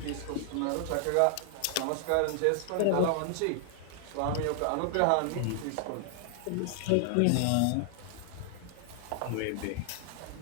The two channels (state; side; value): different; both; correlation 0.00